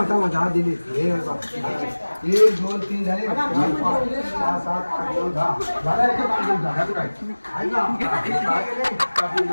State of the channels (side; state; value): both; inverted; correlation -1.00